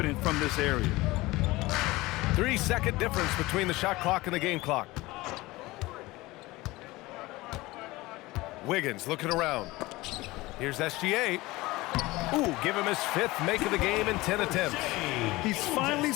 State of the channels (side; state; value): right; quieter; 20.2 dB